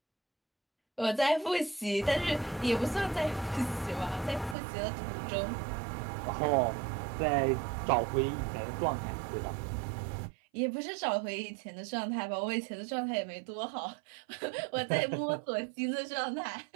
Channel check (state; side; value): drops out; left; at 4.5 s